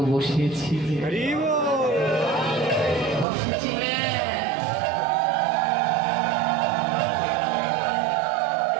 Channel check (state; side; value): drops out; left; at 3.2 s